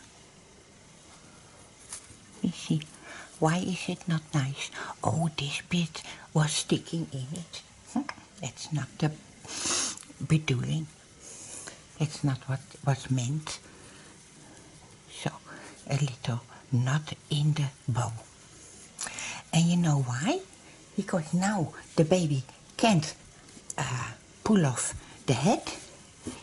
Let me see. Why is it not nice? Oh, this bit was sticking in it. That's not the bedoeling. That's not what was meant. So, a little knot in the bow. And you know why? Because now the baby can't pull off the head,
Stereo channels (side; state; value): both; identical; correlation 1.00